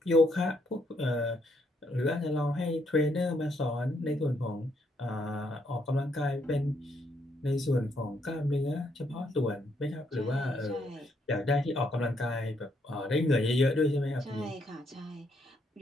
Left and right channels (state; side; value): normal; both; correlation 0.74